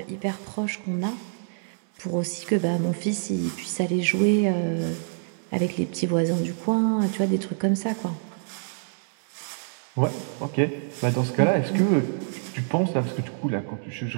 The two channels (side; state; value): left; silent; digital silence